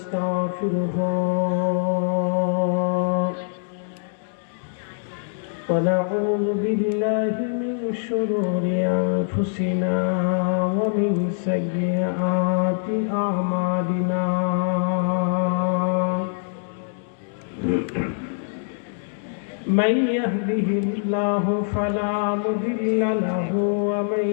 ونعوذ بالله من شرور أنفسنا ومن سيئات أعمالنا من يهده الله فلا مضل له ومن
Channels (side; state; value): right; silent; 61 dB below the other